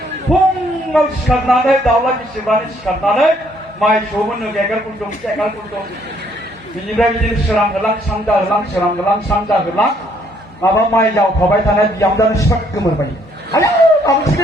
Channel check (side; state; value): both; normal; correlation 0.66